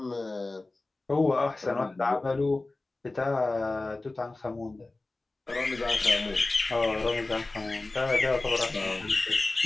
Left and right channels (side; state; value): right; quieter; 3.1 dB